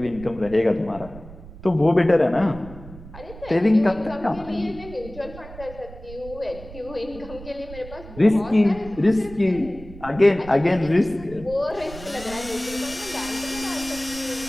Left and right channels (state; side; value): noise; right; rumble, 16 dB below the sound